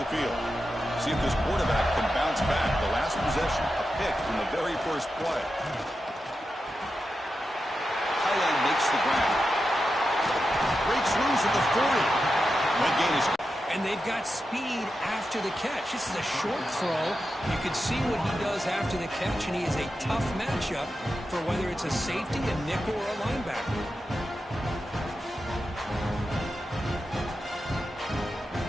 field. See if this quarterback can bounce back. The last possession, a pick from the very first play. Highland makes the ground. Breaks loose at the 40. That gain is... And they've got speed after the catch. This is a short throw. You can see what he does after the catch, and he is a tough matchup for whether it's a safety, a nickel, or a linebacker.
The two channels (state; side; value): normal; both; correlation 0.90